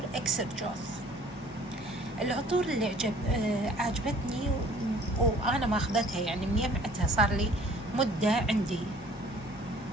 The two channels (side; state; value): both; normal; correlation 0.53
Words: إكسرجوث. العطور اللي عجبتني وأنا ماخذتها، يعني مجمعتها صار لي مدة عندي.